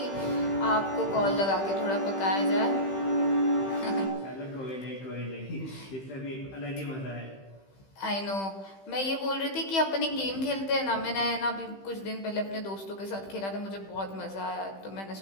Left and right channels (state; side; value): late; right; 15 ms